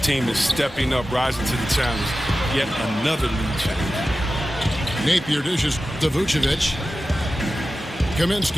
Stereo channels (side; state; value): both; normal; correlation 0.94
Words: is stepping up, rising to the challenge. Yet another lead change. Napier dishes to Vucevic.